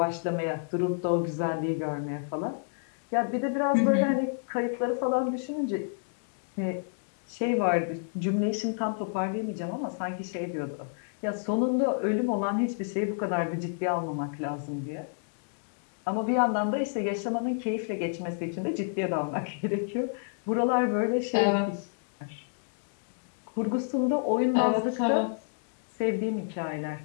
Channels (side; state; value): right; silent; digital silence